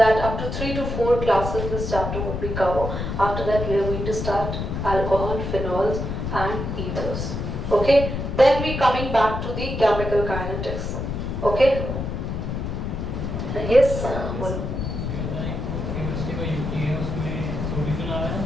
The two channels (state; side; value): noise; left; rumble, 4 dB below the sound